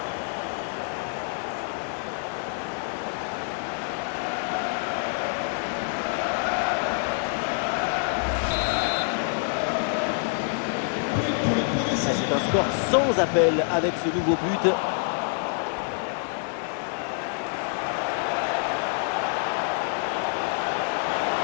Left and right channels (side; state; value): right; silent; 56 dB below the other